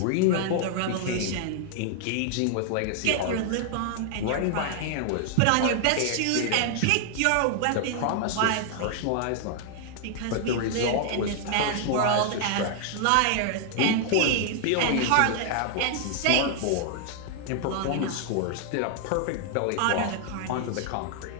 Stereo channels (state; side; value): different; both; correlation 0.00